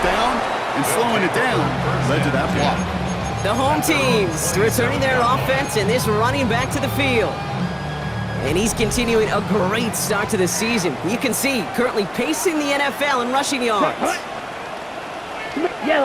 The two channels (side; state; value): both; identical; correlation 1.00